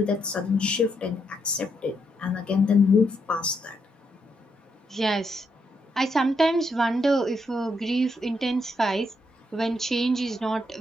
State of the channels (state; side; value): normal; both; correlation 0.78